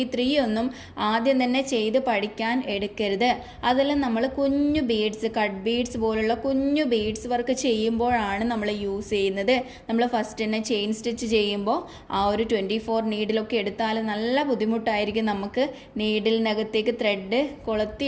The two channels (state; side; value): identical; both; correlation 1.00